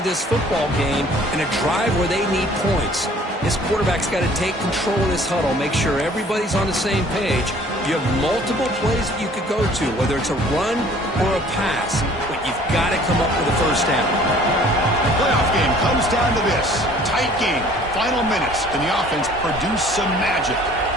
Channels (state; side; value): normal; both; correlation 0.53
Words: this football game in a drive where they need points. This quarterback's got to take control of this huddle, make sure everybody's on the same page. You have multiple plays that you could go to, whether it's a run or a pass, but you've got to come up with a first down. The playoff game comes down to this. Tight game, final minutes. Can the offense produce some magic?